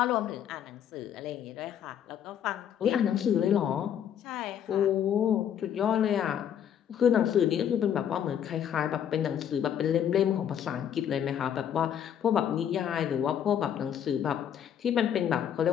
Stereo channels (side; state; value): right; quieter; 9.3 dB